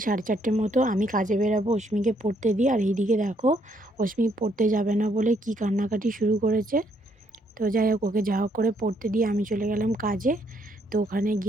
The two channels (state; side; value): normal; both; correlation 0.71